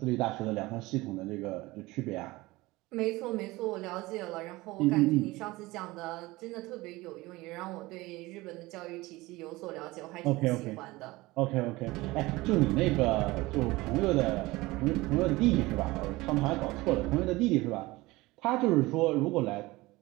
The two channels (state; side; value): quieter; left; 20.5 dB